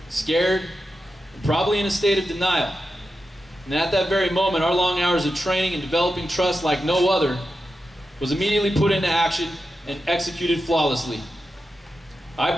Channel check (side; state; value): both; normal; correlation 0.90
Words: scared, and probably in a state of denial. And at that very moment, our long hours of training and developing trust like no other was immediately put into action and executed flawlessly. I